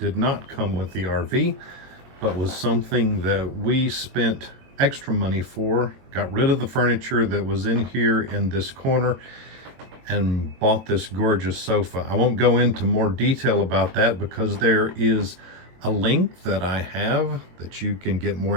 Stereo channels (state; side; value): late; left; 22 ms